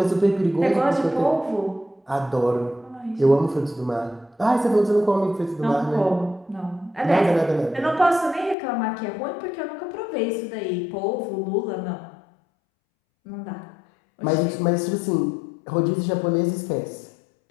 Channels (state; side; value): drops out; right; at 8.6 s